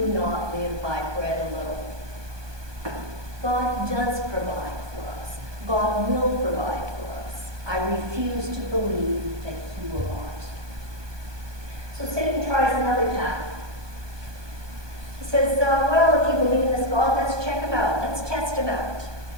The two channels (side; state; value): left; late; 1.2 ms